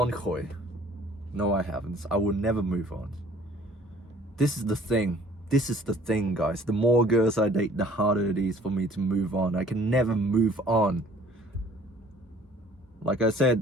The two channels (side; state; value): both; normal; correlation 0.55